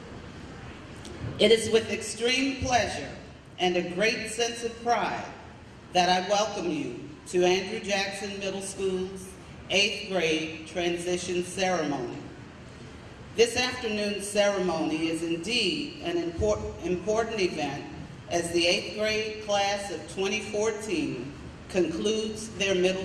It is with extreme pleasure and a great sense of pride that I welcome you to Andrew Jackson Middle School's 8th grade transition ceremony. This afternoon's ceremony is indeed an important event as the 8th grade class of 2014 concludes their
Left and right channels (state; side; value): identical; both; correlation 1.00